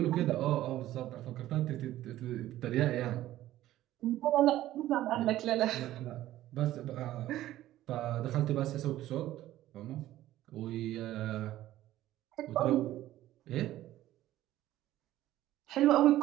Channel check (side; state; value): left; quieter; 14.3 dB